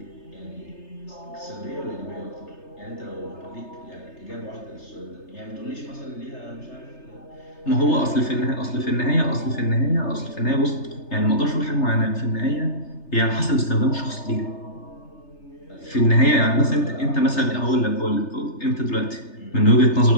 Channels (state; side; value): late; right; 3.3 ms